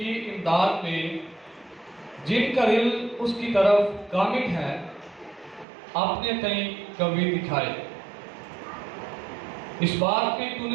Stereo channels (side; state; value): left; drops out; at 5.7 s